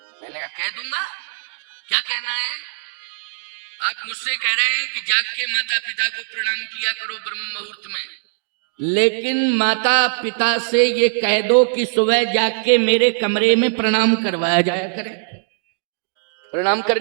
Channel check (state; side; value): silent; left; digital silence